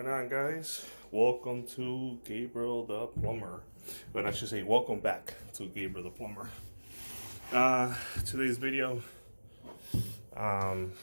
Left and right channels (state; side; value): inverted; both; correlation -1.00